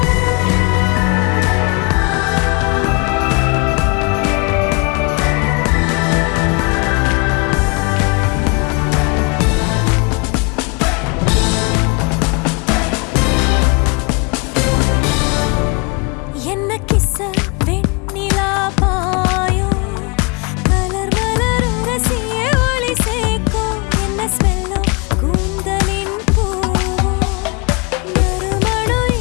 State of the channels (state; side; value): quieter; right; 30.3 dB